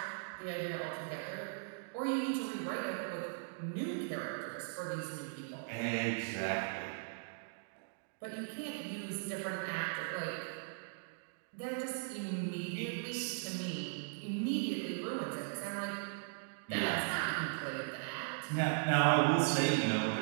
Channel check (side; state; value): left; silent; digital silence